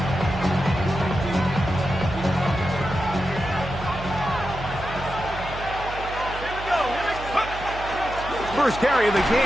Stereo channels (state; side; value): noise; right; hum, 11 dB below the sound